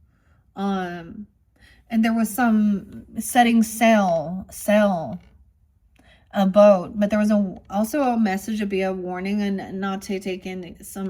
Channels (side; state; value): both; identical; correlation 1.00